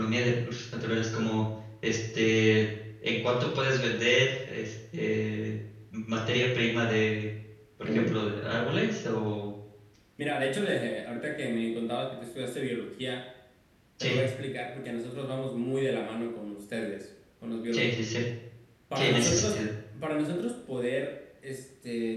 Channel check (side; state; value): both; identical; correlation 1.00